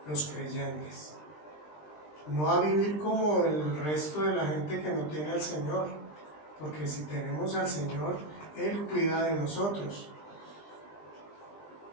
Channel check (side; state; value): right; late; 20 ms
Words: los creyentes. No a vivir como el resto de la gente que no tiene al Señor, porque si tenemos al Señor, Él cuida de nosotros.